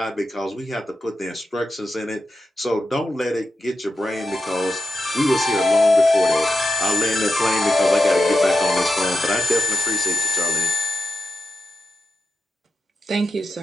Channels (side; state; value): both; normal; correlation 0.87